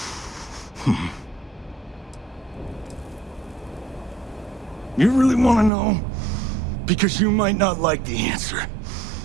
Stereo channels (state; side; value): drops out; left; at 5.7 s